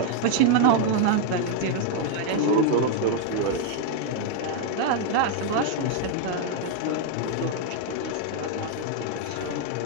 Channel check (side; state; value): both; different; correlation 0.00